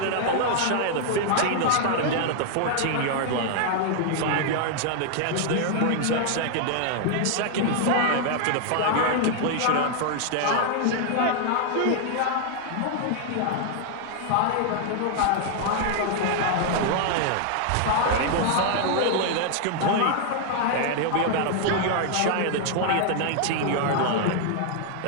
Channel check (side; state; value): both; different; correlation 0.00